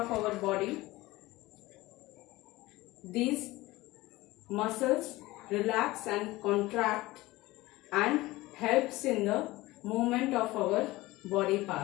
our body. These muscles relax and contract and helps in the movement of our body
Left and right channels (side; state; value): right; quieter; 19.3 dB